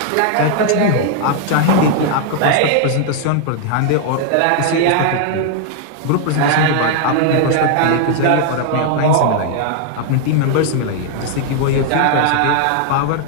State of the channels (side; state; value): both; different; correlation 0.00